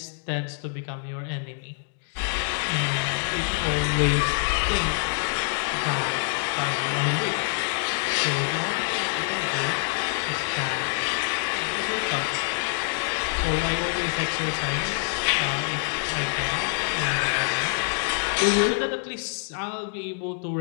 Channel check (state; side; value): silent; right; digital silence